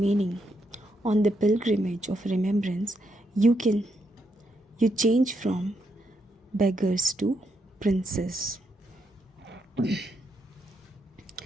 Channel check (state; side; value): normal; both; correlation 0.79